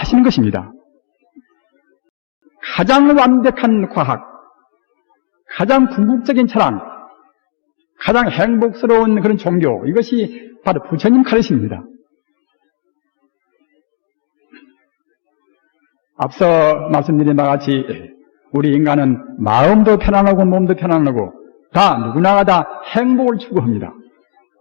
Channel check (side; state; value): right; silent; digital silence